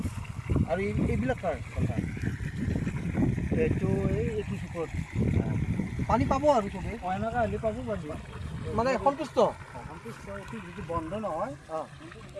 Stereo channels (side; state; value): both; identical; correlation 1.00